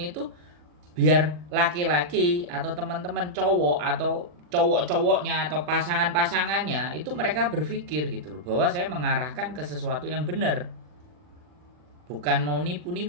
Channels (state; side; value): late; left; 40 ms